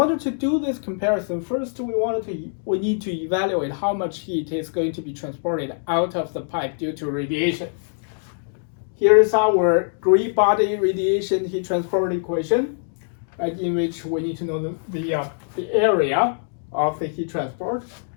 to do this comparison, first we need to evaluate how much heat is going to be transported out of the pipe due to radiation. Here is our gray body radiation heat transport equation, right, in which we need to know the area of the heat transport,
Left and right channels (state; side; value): silent; right; digital silence